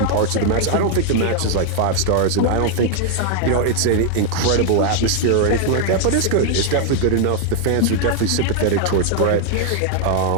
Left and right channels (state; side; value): different; both; correlation 0.00